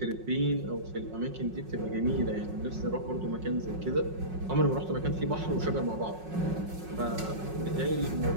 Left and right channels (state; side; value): late; left; 5.5 ms